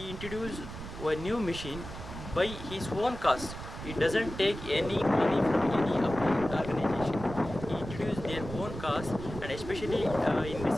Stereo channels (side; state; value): right; noise; rumble, 10 dB below the sound